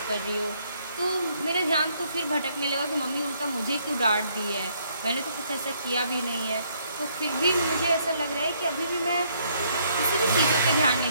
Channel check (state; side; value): inverted; both; correlation -0.68